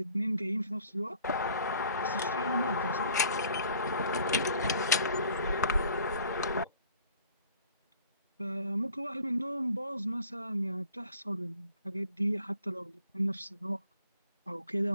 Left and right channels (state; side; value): inverted; both; correlation -0.53